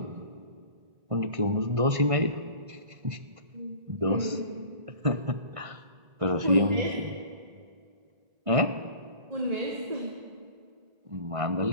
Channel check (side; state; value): left; late; 1.5 ms